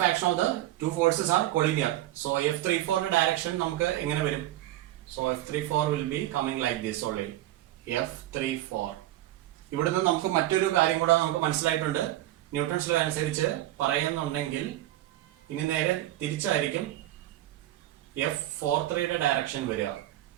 action of the 2 forces are collinear. So F34 direction നമുക്ക് എങ്ങനെ വരും? So F34 will be coming like this only. F34. ഇവിടുന്ന് നമുക്ക് മറ്റൊരു കാര്യം കൂടെ നമുക്ക് മനസ്സിലായിട്ടുണ്ട്. ന്യൂട്ടൺസ് ലോ അനുസരിച്ച് പറയുന്നുണ്ടെങ്കിൽ ഇനി നേരെ തിരിച്ചായിരിക്കും F43-യുടെ ഡയറക്ഷൻ വരിക.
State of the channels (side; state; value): left; quieter; 14.7 dB